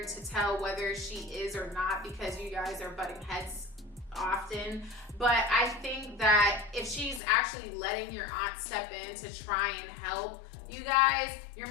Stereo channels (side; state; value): right; drops out; at 7.2 s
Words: to tell whether she is or not because you guys are butting heads often, But I think that if she's actually letting your aunt step in to try and help you guys, your